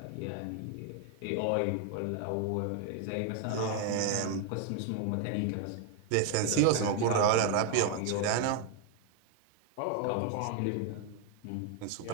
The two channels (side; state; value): both; different; correlation 0.01